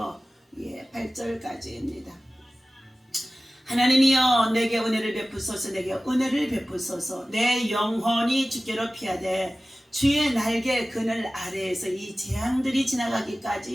8절까지입니다. 하나님이여 내게 은혜를 베푸소서. 내게 은혜를 베푸소서. 내 영혼이 주께로 피하되 주의 날개 그늘 아래에서 이 재앙들이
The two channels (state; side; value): normal; both; correlation 0.97